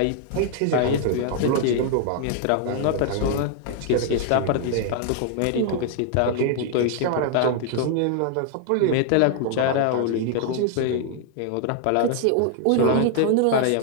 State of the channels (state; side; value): different; both; correlation 0.00